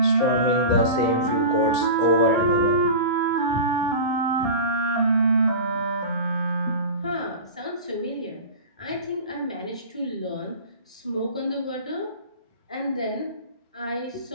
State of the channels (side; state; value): both; inverted; correlation -0.31